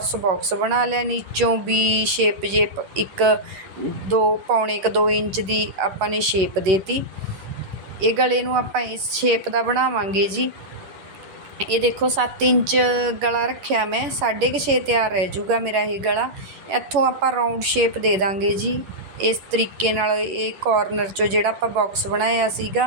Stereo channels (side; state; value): left; late; 11 ms